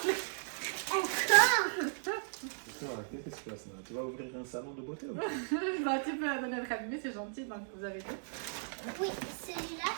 Encore. Qu'est-ce qui se passe là? Tu vas ouvrir un salon de beauté ou Bah, tu peux donner le cabinet, c'est gentil, donc vous avez dit. Oui, celui-là,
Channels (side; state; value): left; silent; digital silence